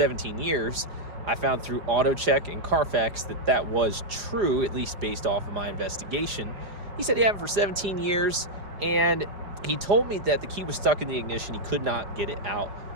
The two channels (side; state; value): left; late; 4.9 ms